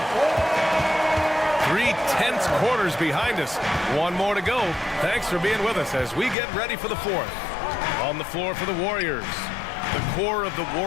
3 tense quarters behind us. 1 more to go. Thanks for being with us as we get ready for the 4th. On the floor for the Warriors. The core of the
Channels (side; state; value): right; drops out; at 6.4 s